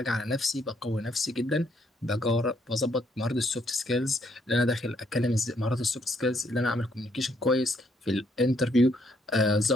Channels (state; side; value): normal; both; correlation 0.71